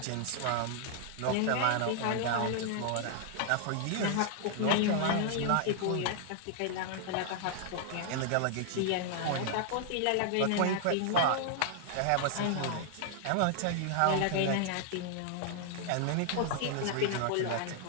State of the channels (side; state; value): both; different; correlation 0.00